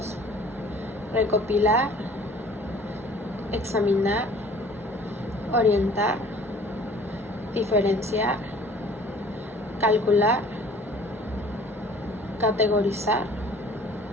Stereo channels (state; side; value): normal; both; correlation 0.51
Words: recopilar, examinar, orientar, diferenciar, calcular, categorizar,